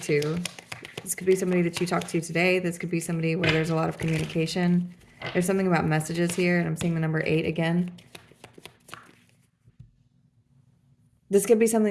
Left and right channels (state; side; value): identical; both; correlation 1.00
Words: to. This could be somebody that you talk to today. This could be somebody where there's a lot of communication. There's something about messages here, and I'm seeing the number 8 again. This could be